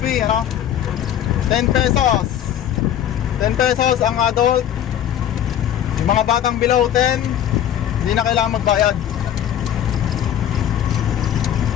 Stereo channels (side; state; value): right; quieter; 10.5 dB